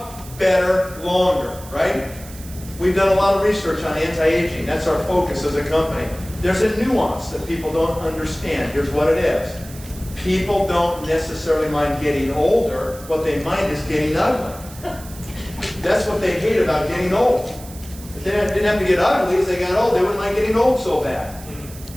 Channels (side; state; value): right; noise; hiss, 18 dB below the sound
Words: better longer, right? We've done a lot of research on anti-aging. That's our focus as a company. There's a nuance that people don't understand. Here's what it is. People don't necessarily mind getting older. What they mind is getting ugly. That's what they hate about getting old. If they didn't have to get ugly as they got old, they wouldn't mind getting old so bad.